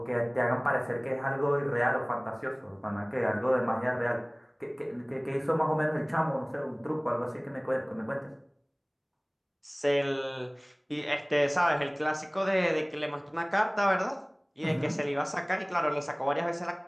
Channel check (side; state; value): both; identical; correlation 1.00